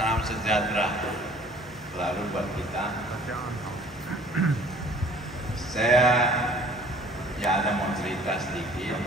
sejahtera selalu buat kita. Saya ada mau cerita sedikit.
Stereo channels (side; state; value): both; normal; correlation 0.52